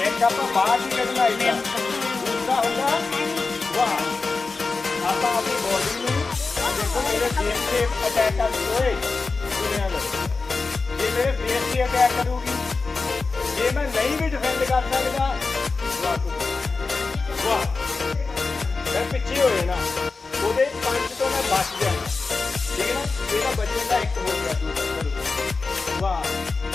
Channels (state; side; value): quieter; right; 4.1 dB